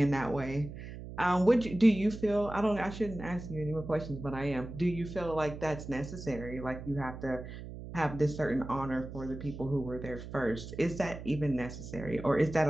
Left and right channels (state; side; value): noise; right; hum, 11 dB below the sound